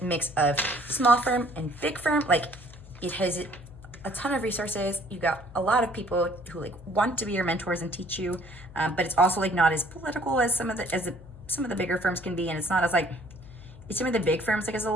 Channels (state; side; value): noise; left; hum, 19 dB below the sound